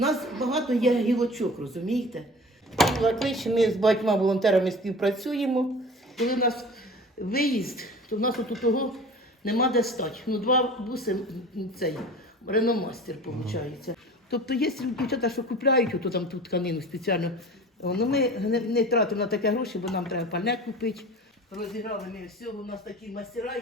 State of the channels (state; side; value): normal; both; correlation 0.40